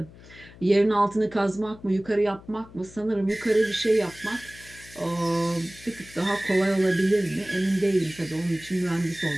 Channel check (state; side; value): noise; left; hum, 21 dB below the sound